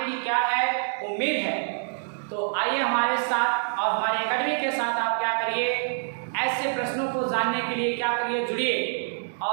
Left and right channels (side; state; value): left; silent; digital silence